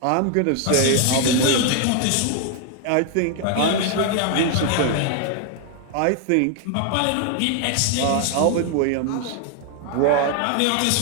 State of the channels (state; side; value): different; both; correlation 0.00